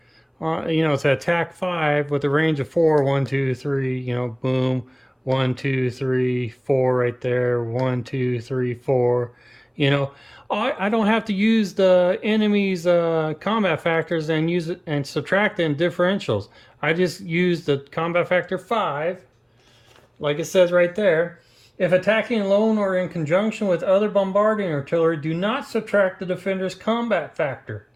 it's an attack 5 with a range of 4. 1, 2, 3, boom. 1, 2, 3, 4 right there. 1, 2, 3, 4. You know, I don't have to use the enemy's combat factors and use it and subtract them differentials. I just use the combat factor 5, like it says right there. If attacking alone or in conjunction with other bombarding artillery, do not subtract the defender's combat factor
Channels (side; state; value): both; identical; correlation 1.00